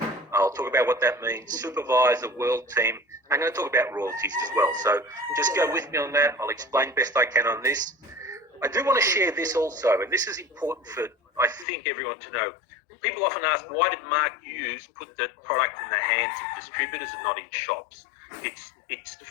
I'll talk about what that means, supervisor, world team. I'm going to talk about royalties as well. So just go with me on that. I'll explain best I can on this. I do want to share this also, and this is important for, I think, everyone to know. People often ask, why did Mark Hughes put the product in the hands of distributors and not in shops? It's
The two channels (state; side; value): drops out; right; at 11.7 s